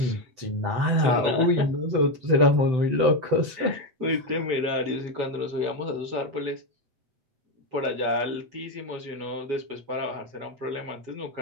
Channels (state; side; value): late; left; 7.9 ms